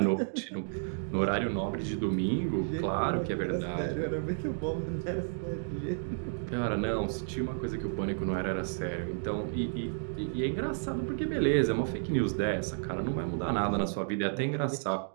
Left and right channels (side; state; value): left; silent; digital silence